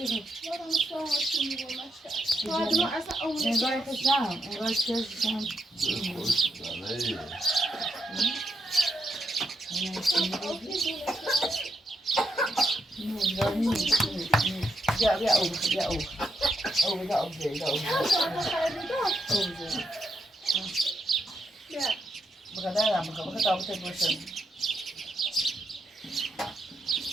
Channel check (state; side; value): normal; both; correlation 0.79